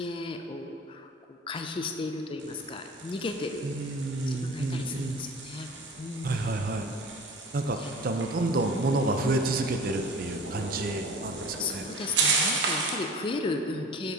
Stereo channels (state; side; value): normal; both; correlation 0.40